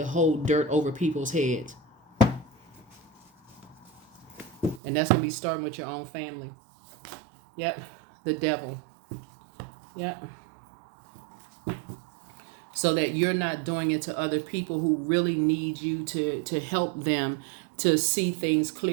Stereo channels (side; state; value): left; drops out; at 4.8 s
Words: hold dirt over people's heads. And that's going to be starting with your own family. Yep. The devil. Yep. So that you're not doing it to other people who really need you to help them to see things